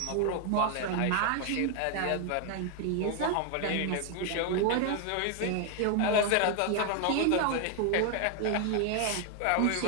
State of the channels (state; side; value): different; both; correlation 0.00